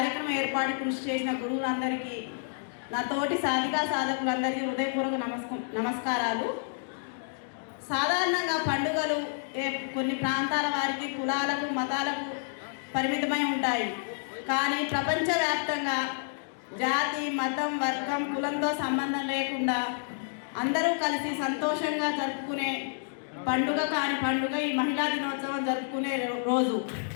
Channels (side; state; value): right; silent; digital silence